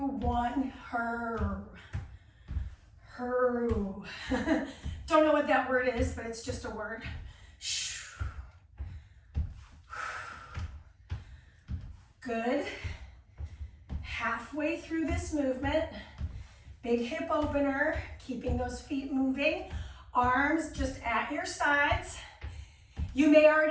her. Don't know what that word is, but it's just a word. Good. Halfway through this movement, big hip opener, keeping those feet moving. Arms just at your sides. You may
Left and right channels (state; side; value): identical; both; correlation 1.00